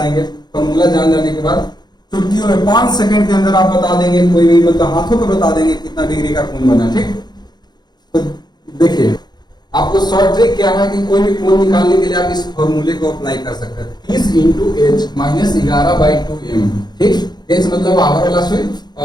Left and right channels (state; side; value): late; right; 0.20 ms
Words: फॉर्मूला जान जाने के बाद चुटकियों में 5 सेकंड के अंदर आप बता देंगे, कोई भी मतलब हाथों पर बता देंगे कितना डिग्री का कोण बना, ठीक। तो देखिए आपको शॉर्ट ट्रिक क्या है कि कोई भी कोण निकालने के लिए आप इस फॉर्मूले को अप्लाई कर सकते हैं, 30 इंटू h माइनस 11/2m, ठीक। h मतलब आवर वाला सुई